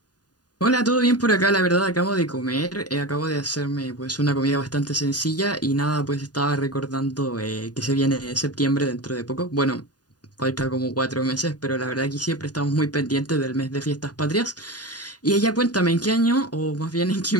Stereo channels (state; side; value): late; right; 0.69 ms